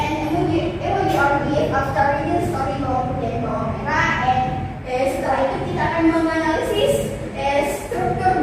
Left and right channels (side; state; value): both; identical; correlation 1.00